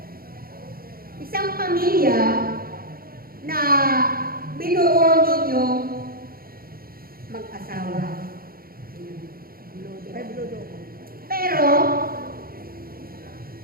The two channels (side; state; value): left; late; 0.43 ms